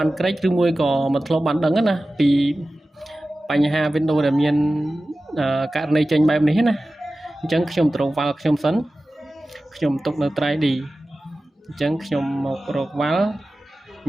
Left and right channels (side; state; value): both; normal; correlation 0.96